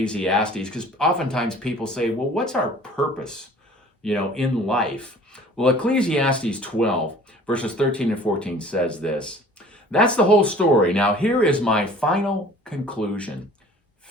because oftentimes people say, well, what's our purpose, in life? Well, Ecclesiastes 12, verses 13 and 14 says this. That's the whole story. Now, here is my final conclusion.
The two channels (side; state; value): both; normal; correlation 0.49